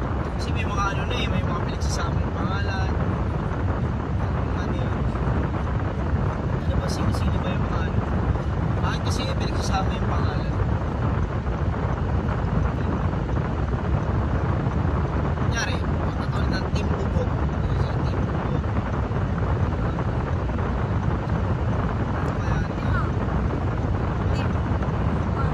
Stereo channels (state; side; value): identical; both; correlation 1.00